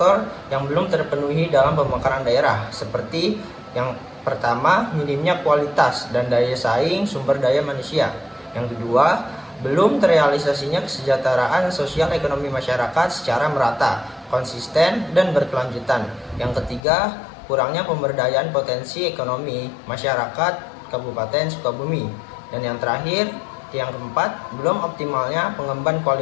yang belum terpenuhi dalam pemekaran daerah, seperti yang pertama, minimnya kualitas dan daya saing sumber daya manusia. Yang kedua, belum terrealisasinya kesejahteraan sosial ekonomi masyarakat secara merata, konsisten, dan berkelanjutan. Yang ketiga, kurangnya pemberdayaan potensi ekonomi masyarakat Kabupaten Sukabumi. Dan yang terakhir, yang keempat, belum optimalnya pengembangan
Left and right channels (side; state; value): right; drops out; at 16.8 s